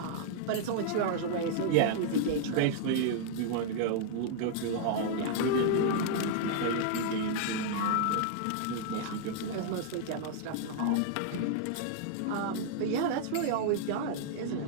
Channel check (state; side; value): different; both; correlation -0.01